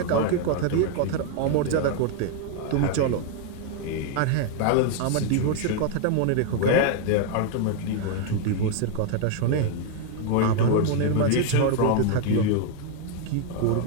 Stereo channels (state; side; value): different; both; correlation 0.00